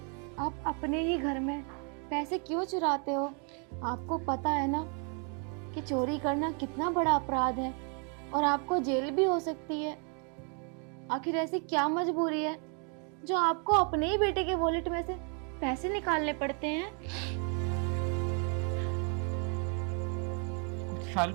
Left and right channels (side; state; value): left; quieter; 39.7 dB